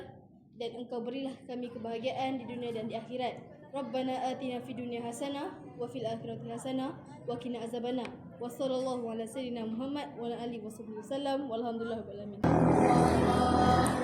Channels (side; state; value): both; identical; correlation 1.00